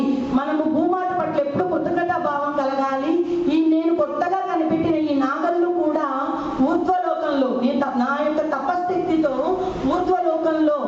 మనము భూమాత పట్ల ఎప్పుడు కృతజ్ఞత భావం కలగాలి, నేను కొత్తగా కనిపెట్టిన ఈ నాగళ్ళు కూడా ఊర్ధ్వలోకంలో, నా యొక్క తపస్థితితో ఊర్ధ్వలోకంలో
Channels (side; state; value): both; identical; correlation 1.00